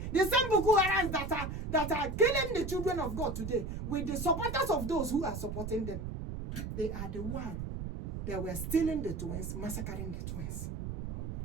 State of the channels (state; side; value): noise; right; rumble, 5 dB below the sound